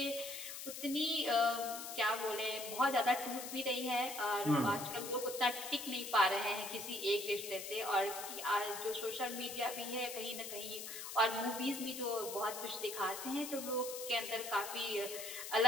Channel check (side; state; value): left; noise; hiss, 8 dB below the sound